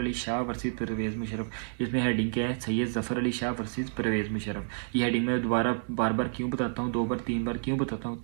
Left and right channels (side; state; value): left; silent; 58 dB below the other